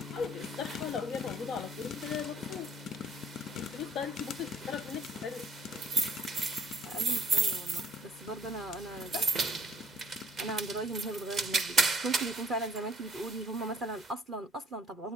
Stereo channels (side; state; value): both; normal; correlation 0.59